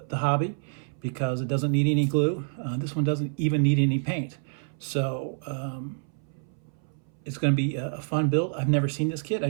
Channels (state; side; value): silent; left; 60 dB below the other